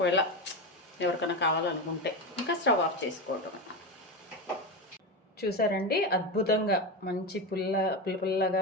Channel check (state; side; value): normal; both; correlation 0.17